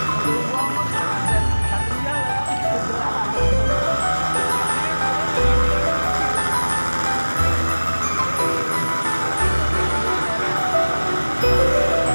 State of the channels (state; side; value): inverted; both; correlation -1.00